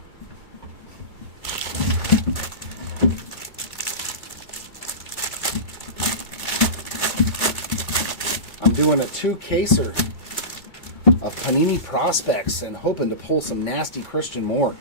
I'm doing a two-caser of Panini Prospects and hoping to pull some nasty Christian Moore.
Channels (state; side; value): late; right; 2.3 ms